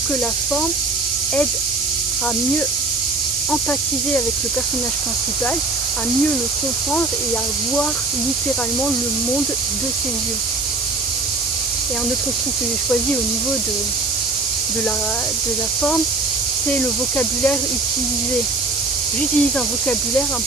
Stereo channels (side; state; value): right; noise; hiss, 1 dB below the sound